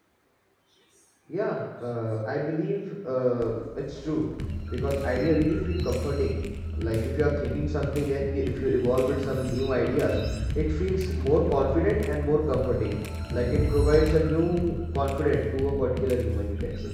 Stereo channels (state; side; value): identical; both; correlation 1.00